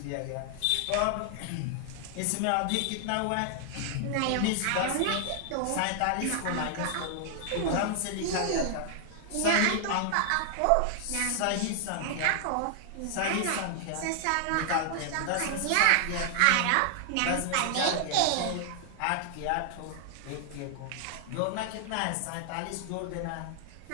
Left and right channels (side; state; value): both; different; correlation 0.00